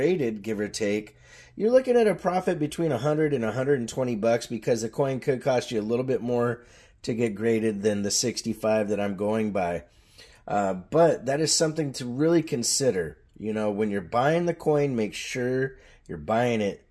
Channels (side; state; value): both; identical; correlation 1.00